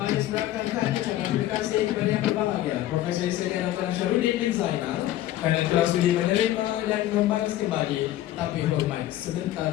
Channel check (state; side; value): quieter; right; 13.9 dB